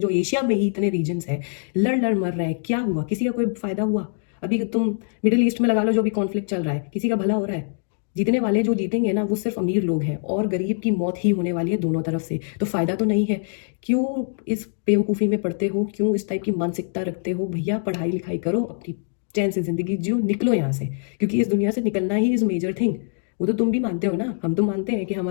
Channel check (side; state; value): right; silent; digital silence